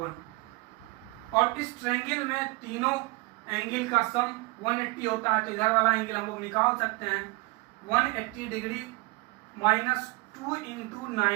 और इस ट्रायंगल में तीनों एंगल का सम 180 होता है। तो इधर वाला एंगल हम लोग निकाल सकते हैं 180 degree minus 2 into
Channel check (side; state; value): left; quieter; 25.6 dB